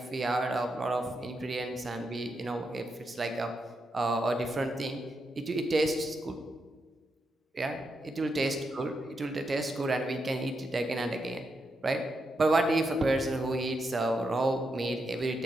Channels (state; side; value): normal; both; correlation 0.84